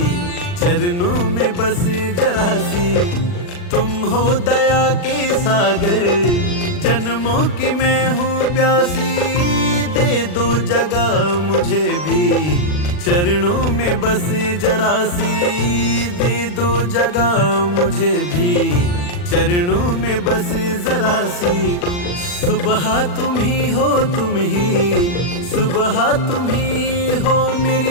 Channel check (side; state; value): right; late; 40 ms